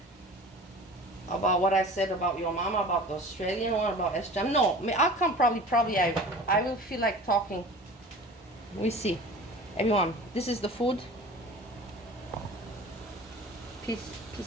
About what I said about your mama, about the Australian one, about Sjam. No, I'll come probably I will feel like talking. We see. Everyone, this is the food. Peace,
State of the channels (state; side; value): normal; both; correlation 0.40